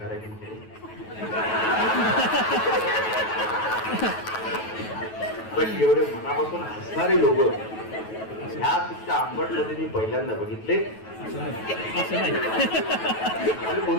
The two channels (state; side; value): late; right; 9.2 ms